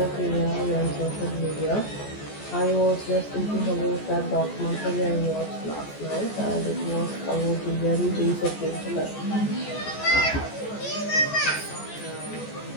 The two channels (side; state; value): right; late; 14 ms